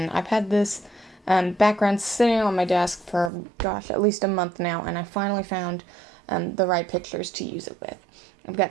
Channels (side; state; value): left; drops out; at 3.3 s